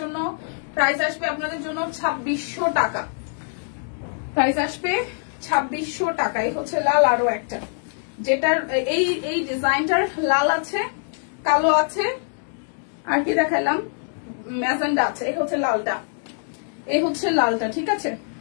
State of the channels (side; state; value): right; silent; 63 dB below the other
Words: প্রাইস আসবে আপনাদের জন্য 2600 টাকা। প্রাইস আসবে 2600 টাকা। এই হচ্ছে লাল আরো একটা, যেটার এই ডিজাইনটার লাল আছে, কালো আছে, আর কি দেখালাম, ম্যাজেন্ডা আছে। এই হচ্ছে লালটা, এই হচ্ছে লালটা, ঠিক আছে,